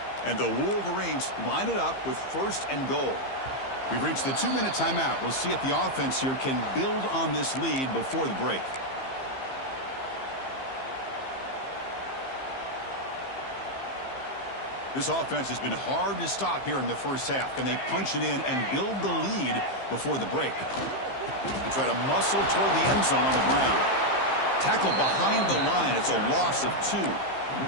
And the Wolverines line it up with 1st and goal. We've reached the 2-minute timeout. We'll see if the offense here can build on this lead before the break. This offense has been hard to stop here in the first half. Can they punch it in and build the lead before the break? They try to muscle toward the end zone on the ground. Tackle behind the line. It's a loss of 2.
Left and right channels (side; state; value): right; late; 15 ms